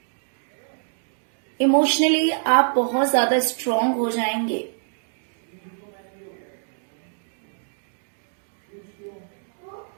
इमोशनली आप बहुत ज्यादा स्ट्रांग हो जाएंगे।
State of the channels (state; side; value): silent; left; digital silence